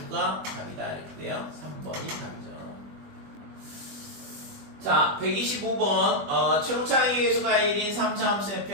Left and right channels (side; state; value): left; late; 20 ms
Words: 답이다 이렇게 돼요. 3번이 답이죠. 자, 125번 최고차의 예수가 1인 3차 함수